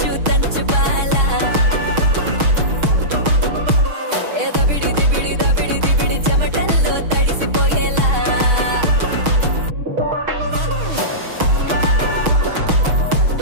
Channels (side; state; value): left; late; 6.4 ms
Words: బాలా దబిడి చెమటల్లో తడిసిపోయేలా